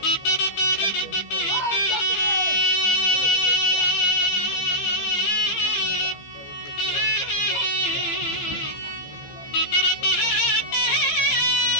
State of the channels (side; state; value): right; late; 15 ms